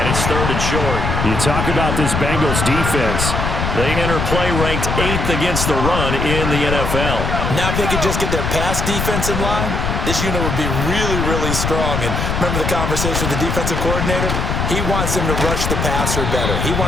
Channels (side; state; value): left; noise; rumble, 1 dB below the sound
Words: it's 3rd and short. You talk about this Bengals defense. They enter play ranked 8th against the run in the NFL. Now if they could just get their pass defense in line, this unit would be really, really strong. And remember the conversation with the defensive coordinator? He wants them to rush the passer better. He